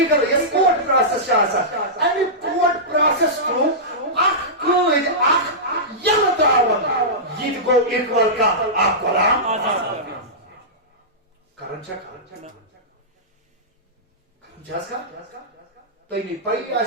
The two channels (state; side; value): normal; both; correlation -0.15